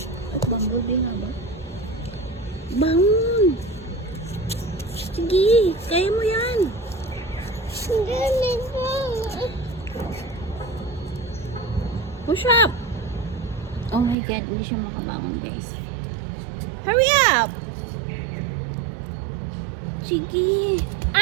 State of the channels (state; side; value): drops out; left; at 14.2 s